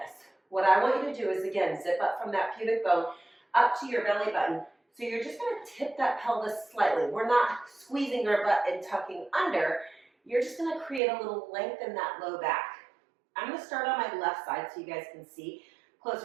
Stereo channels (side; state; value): left; drops out; at 11.0 s